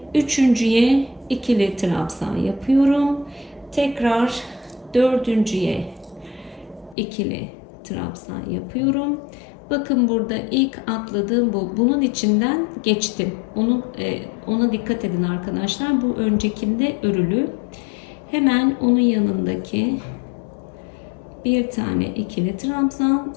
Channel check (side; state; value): right; drops out; at 7.0 s